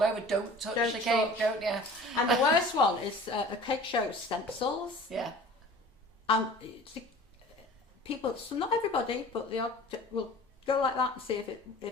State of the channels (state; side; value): normal; both; correlation 0.44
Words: over. Don't touch the cake, don't you? And the worst one is a cake show stencils. Yeah. And people, so not everybody, but they will go like that and see if